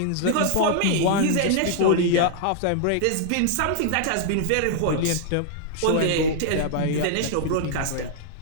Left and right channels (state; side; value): different; both; correlation -0.01